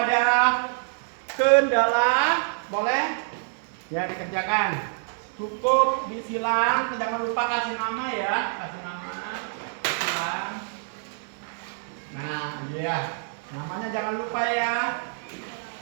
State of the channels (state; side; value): silent; left; 61 dB below the other